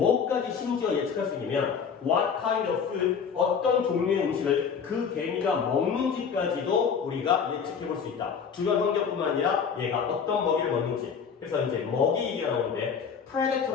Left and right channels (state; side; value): quieter; right; 6.5 dB